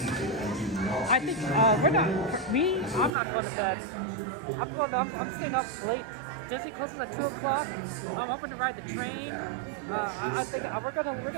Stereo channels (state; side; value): drops out; left; at 3.1 s